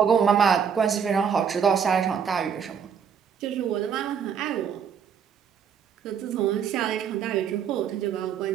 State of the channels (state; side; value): quieter; left; 7.4 dB